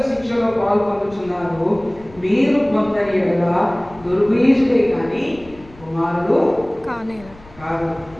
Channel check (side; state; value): left; noise; rumble, 23 dB below the sound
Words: శిక్షలో పాల్పొందుతున్నారు. మీరు పొందని ఎడల దుర్బీజుడే కానీ కుమారుడు కాదు.